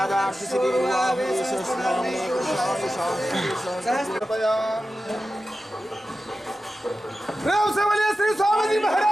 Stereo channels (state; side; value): normal; both; correlation 0.93